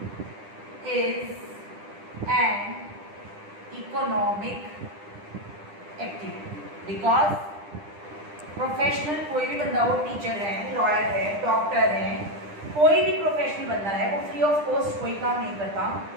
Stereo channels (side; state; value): left; late; 10 ms